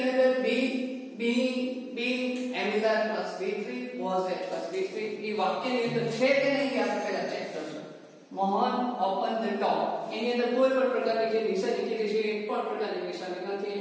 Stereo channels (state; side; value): identical; both; correlation 1.00